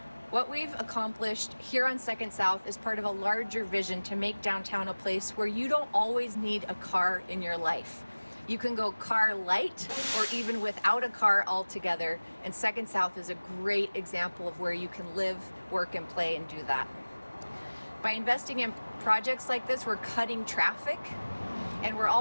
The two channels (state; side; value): inverted; both; correlation -1.00